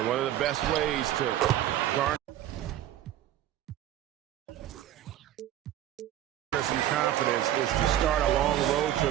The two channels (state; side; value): quieter; left; 12.4 dB